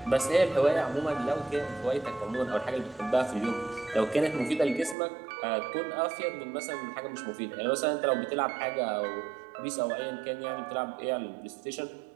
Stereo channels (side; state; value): left; drops out; at 5.0 s